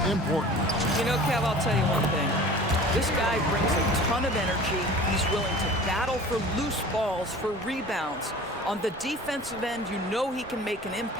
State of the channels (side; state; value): both; normal; correlation 0.42